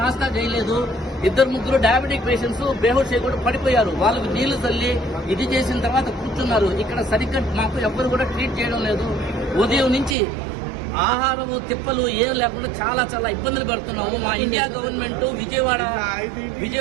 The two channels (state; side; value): drops out; left; at 10.2 s